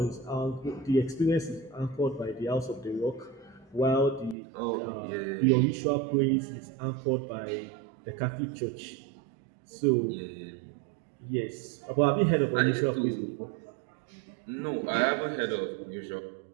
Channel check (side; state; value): left; drops out; at 4.4 s